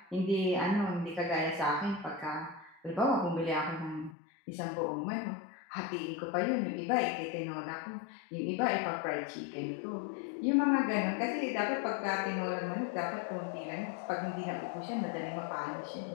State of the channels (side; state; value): right; drops out; at 4.2 s